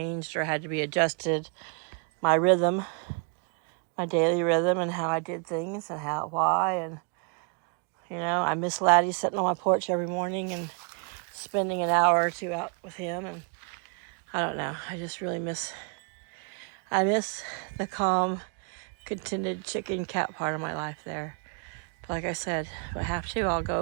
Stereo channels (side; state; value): left; quieter; 39.7 dB